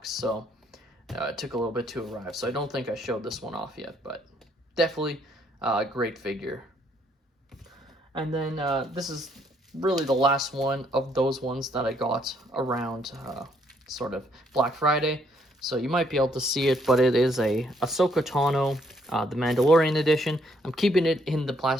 so it took a little bit to arrive. So I don't think I showed this one off yet, but definitely a great figure. And then this is really the last one of those ones that I got around sort of Black Friday. So you might be able to see it, but it is a Ahsoka Tano, the Mandalorian edition. I'm keeping it in the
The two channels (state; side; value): normal; both; correlation 0.69